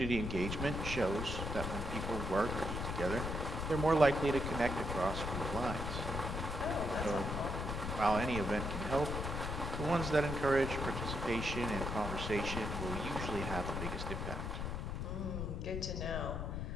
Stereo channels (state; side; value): noise; left; rumble, 3 dB below the sound